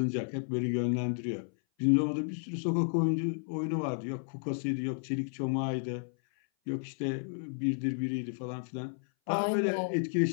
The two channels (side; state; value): right; silent; 56 dB below the other